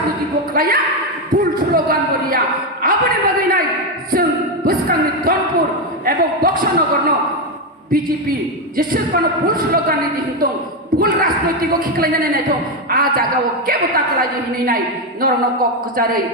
বকলাইয়া ভুল স্লোগান বলিয়া আপনি বাগৈ নাই जों बुसकांनि दनपुर एवं बक्सनगर বিজেপি যেসেবানো ভুল স্লোগান দিহিতং ভুল রাজনৈতিক খিখলাইনাनै নাইথं आ जागाव केबो ताकलाय हिनै नाय नरन कक जारै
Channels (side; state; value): both; normal; correlation 0.07